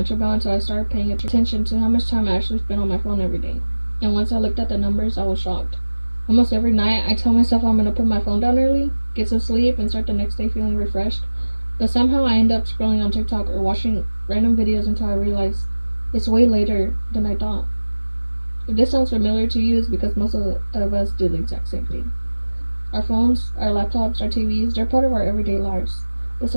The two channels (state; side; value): inverted; both; correlation -1.00